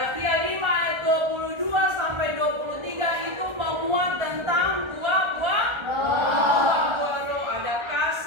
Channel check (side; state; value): left; late; 1.3 ms